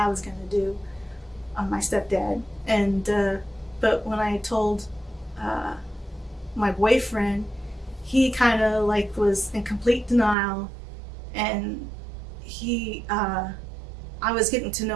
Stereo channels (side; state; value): left; drops out; at 10.4 s